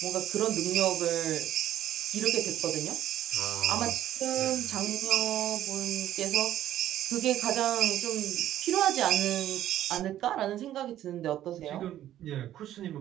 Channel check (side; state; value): left; quieter; 12.4 dB